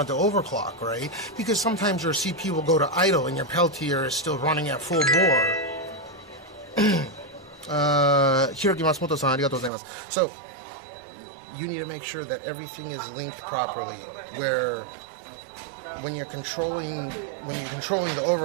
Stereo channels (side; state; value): left; drops out; at 9.7 s